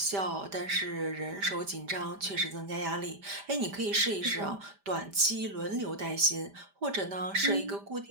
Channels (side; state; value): left; late; 5.0 ms